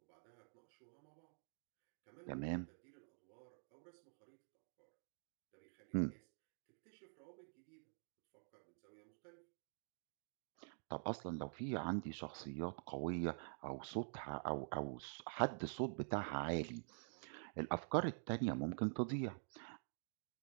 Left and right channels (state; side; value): silent; left; digital silence